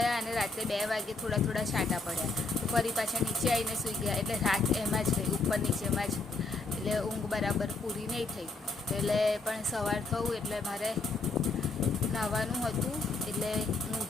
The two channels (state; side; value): quieter; right; 3.6 dB